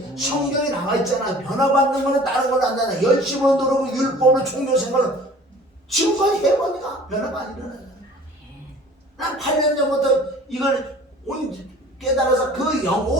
성경에 나와 있잖아. 변화받는 거는 다른 걸로 안 되나. 열심을 누르고 율법으로 종교 생활을 지금까지 해보니까 변화가 안 일어나잖아. 난 8년 전부터 이걸 깨달아서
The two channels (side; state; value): both; normal; correlation 0.47